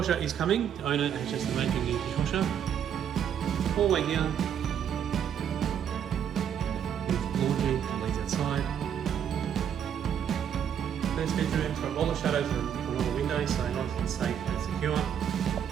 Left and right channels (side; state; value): left; quieter; 8.8 dB